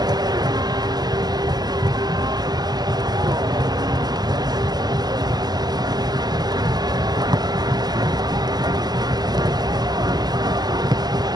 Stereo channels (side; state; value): left; late; 0.20 ms